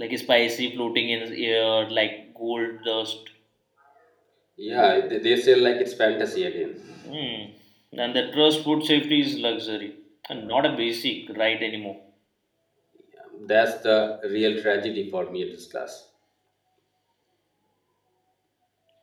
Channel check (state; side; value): identical; both; correlation 1.00